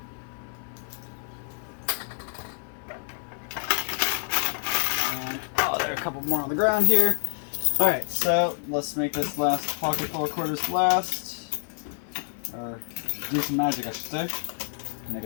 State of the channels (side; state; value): right; silent; 56 dB below the other